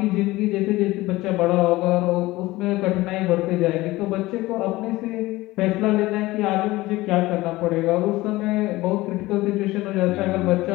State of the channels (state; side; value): quieter; right; 18.9 dB